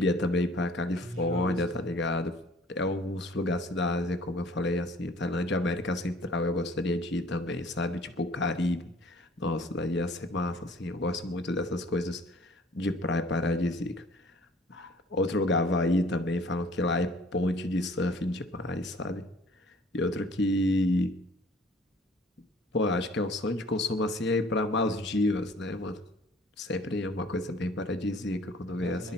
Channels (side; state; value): both; normal; correlation 0.53